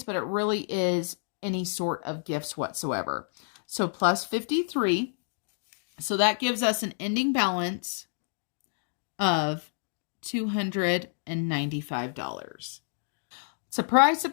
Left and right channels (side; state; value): right; silent; digital silence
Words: but it really is any sort of gifts whatsoever. So plus 53. So that gives us an ending balance of $295. Surprise,